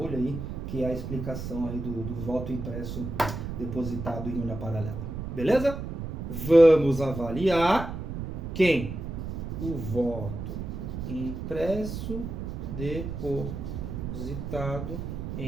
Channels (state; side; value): noise; right; rumble, 6 dB below the sound